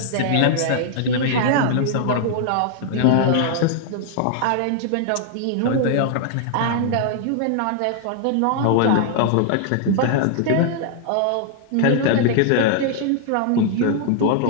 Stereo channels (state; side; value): different; both; correlation -0.01